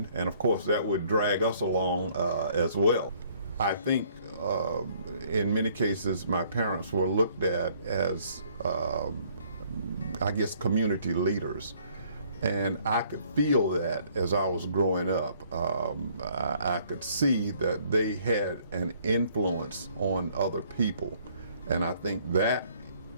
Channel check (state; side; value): inverted; both; correlation -0.62